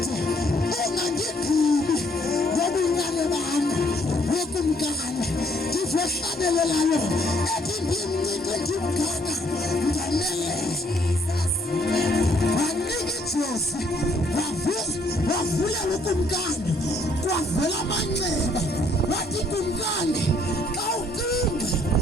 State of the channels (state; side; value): normal; both; correlation 0.66